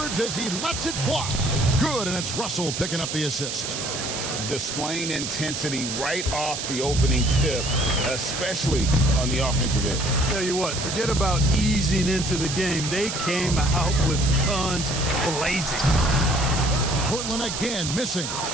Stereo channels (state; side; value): noise; right; hiss, 4 dB below the sound